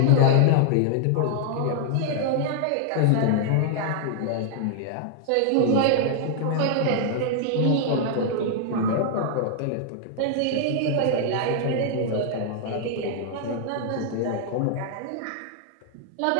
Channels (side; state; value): both; different; correlation -0.01